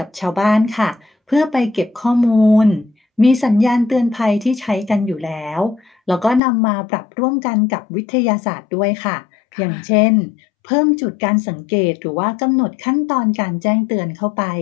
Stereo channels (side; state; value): right; drops out; at 6.4 s